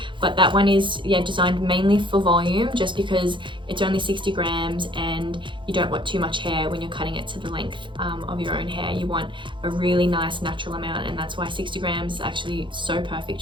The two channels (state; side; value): late; left; 0.23 ms